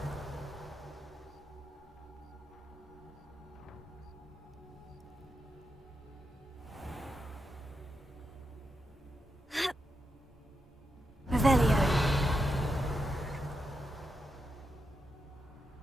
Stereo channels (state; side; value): normal; both; correlation 0.85